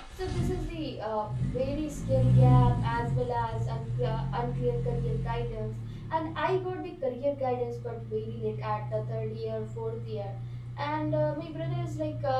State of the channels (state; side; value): identical; both; correlation 1.00